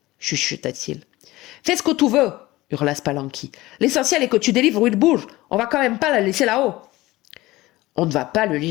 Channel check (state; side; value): quieter; right; 18.6 dB